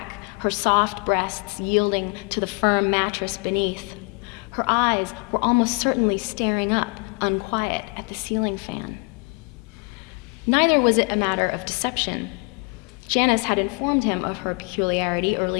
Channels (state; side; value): quieter; right; 32.2 dB